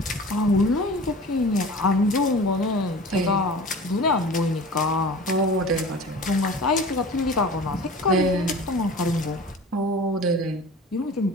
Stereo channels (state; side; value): normal; both; correlation 0.38